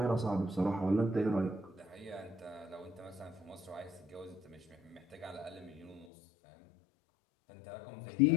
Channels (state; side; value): drops out; right; at 6.1 s